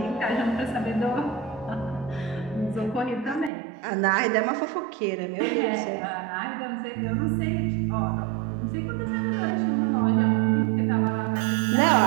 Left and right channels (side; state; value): left; drops out; at 3.5 s